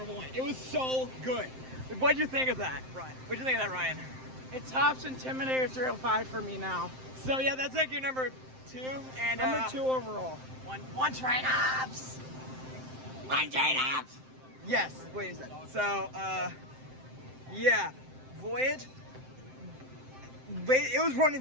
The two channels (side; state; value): left; late; 7.7 ms